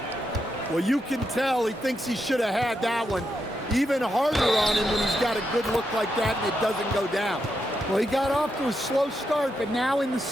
Well, you can tell he thinks he should have had that one. Even harder on him when he's got a good look like that and it doesn't go down. Well, he got off to a slow start, but now in the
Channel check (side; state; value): both; normal; correlation 0.83